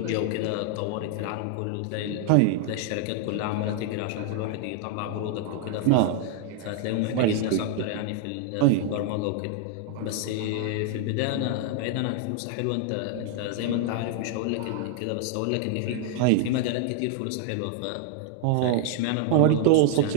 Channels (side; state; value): both; different; correlation -0.01